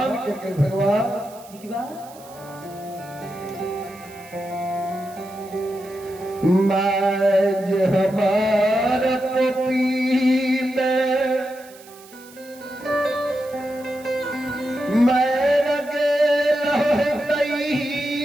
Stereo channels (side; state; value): right; noise; hiss, 22 dB below the sound